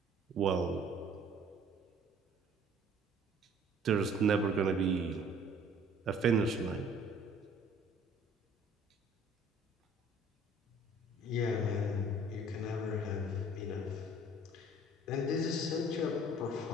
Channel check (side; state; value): both; normal; correlation 0.54